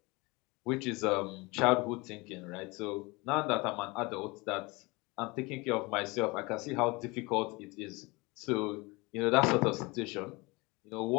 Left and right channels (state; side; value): quieter; right; 24.9 dB